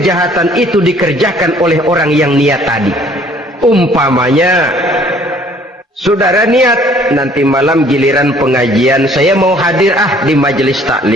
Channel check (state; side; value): normal; both; correlation 0.58